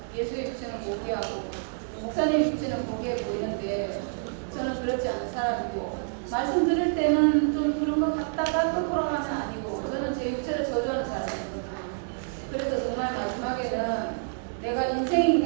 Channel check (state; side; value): silent; left; digital silence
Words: 예수의 육체는 고귀하고 목사님 육체는 고귀해 보이는데 저는 그렇지 않은 사람이고 말씀 들을 때는 좀 그런 것 같다가 또 돌아가면 아니고 저는 제 육체를 저주하는 사람이거든요. 그래서 정말 마지막에는 내가 인생인